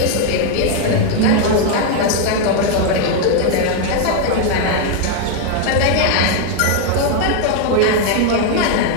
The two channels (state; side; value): different; both; correlation 0.00